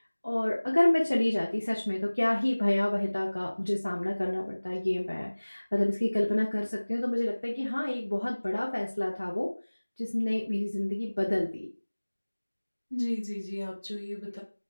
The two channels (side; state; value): both; inverted; correlation -1.00